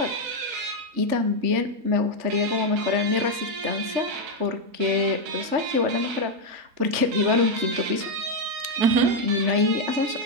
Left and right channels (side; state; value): left; late; 3.4 ms